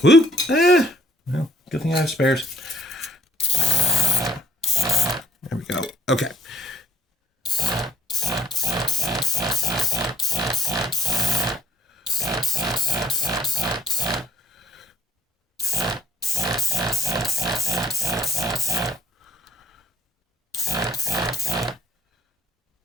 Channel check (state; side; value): normal; both; correlation 0.62